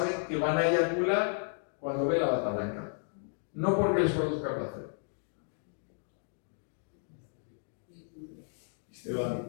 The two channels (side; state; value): right; silent; 56 dB below the other